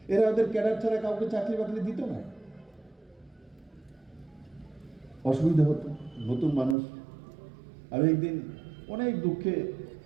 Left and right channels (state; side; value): drops out; left; at 6.8 s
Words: এরা ওদের ক্যাডার ছাড়া কাউকে চাকরি বাকরি দিত না, অসুবিধা হতো। নতুন মানুষ। আমি একদিন অনেক দুঃখে